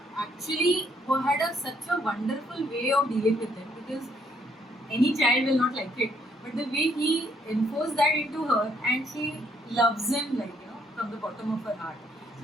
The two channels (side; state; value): both; normal; correlation 0.69